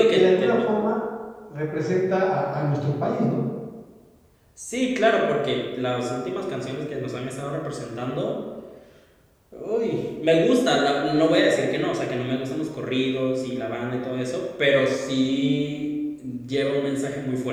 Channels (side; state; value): both; identical; correlation 1.00